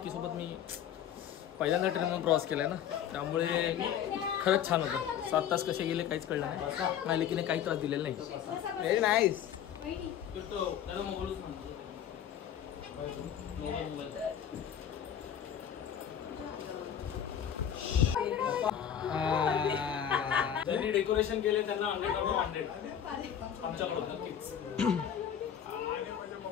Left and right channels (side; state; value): right; quieter; 9.2 dB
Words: मी पहिल्यांदा ट्रेनमधून प्रवास केला ना, त्यामुळे खरंच छान होतं. 7 तास कसे गेले काहीच कळलं नाही. मालिकेने काही त्रास दिलेला नाही. Very nice. ज्यांनी डेकोरेशन केले त्यांना 100 आमच्याकडून नक्कीच.